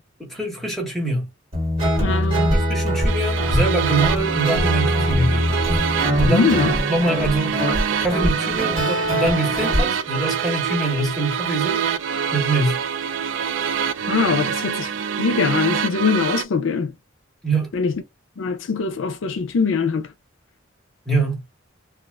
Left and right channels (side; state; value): both; normal; correlation 0.44